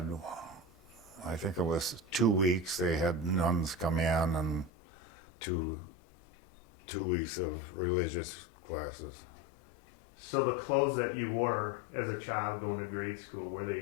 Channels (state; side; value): drops out; right; at 4.7 s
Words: I think it was 2 weeks, they had nuns come in and two weeks of religious classes. So the clothes that you wore as a child going to grade school, were